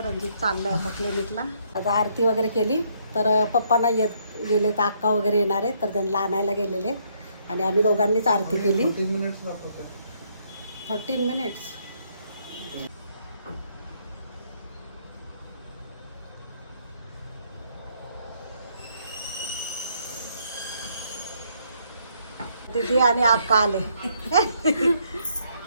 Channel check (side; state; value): both; inverted; correlation -0.70